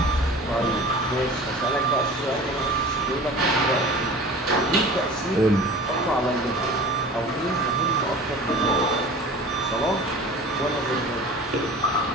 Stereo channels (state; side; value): normal; both; correlation 0.40